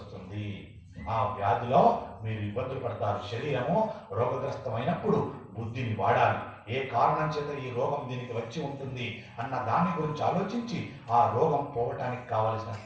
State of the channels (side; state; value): both; identical; correlation 1.00